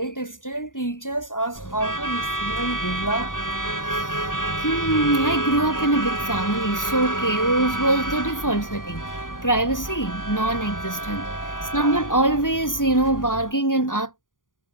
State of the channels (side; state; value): right; late; 0.89 ms